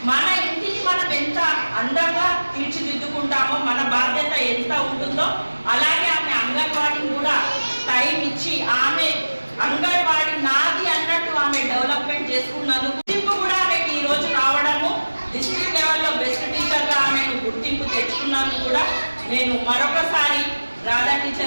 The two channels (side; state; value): both; inverted; correlation -1.00